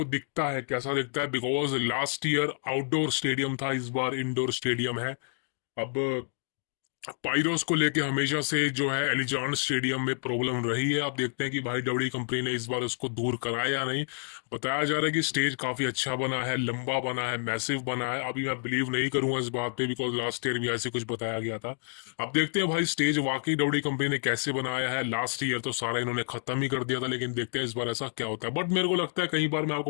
दिखता है कैसा दिखता है, because last year outdoor stadium था, इस बार इंडोर स्टेडियम है। अब पाइरोस को लेके हमेशा से जो है एलिजान स्टेडियम में प्रॉब्लम रही है। आप देखते हैं कि भाई डब्ल्यू कंपनी ने इस बार उसको दूर कराया या नहीं। बताया जा रहा है कि स्टेज काफी अच्छा बना है, लंबा बना है, मैसिव बना है। अभी मैं बिलीव नहीं करूंगा इस बात पे, बिकॉज लास्ट ईयर भी ऐसे कुछ बताया गया था। अब देखते हैं भाई स्टेज वाकई डब्ल्यू कंपनी ने कैसे बनाया है। लास्ट ईयर तो सारा इन्होंने खत्म ही कर दिया था, लेकिन देखते हैं इस बार ऐसा क्या होता है। बट मेरे को लगता है, कई बार मैं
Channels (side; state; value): right; silent; digital silence